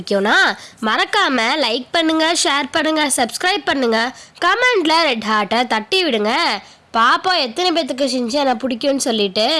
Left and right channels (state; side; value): identical; both; correlation 1.00